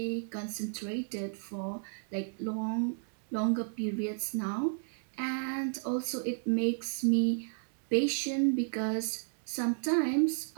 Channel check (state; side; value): silent; left; digital silence